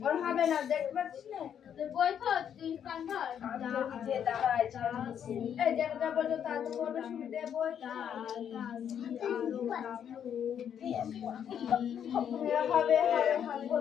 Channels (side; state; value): right; quieter; 8.8 dB